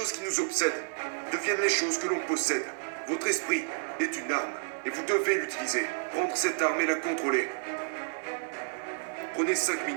qui nous obsèdent deviennent les choses que l'on possède. Votre esprit est une arme et vous devez l'utiliser. Prendre cette arme et la contrôler. Prenez 5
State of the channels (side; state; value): left; silent; digital silence